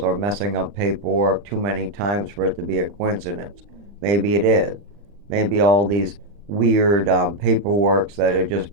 or messing up paperwork too many times for it to be a coincidence. Maybe it is. Maybe all these weird paperworks that are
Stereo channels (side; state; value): left; late; 40 ms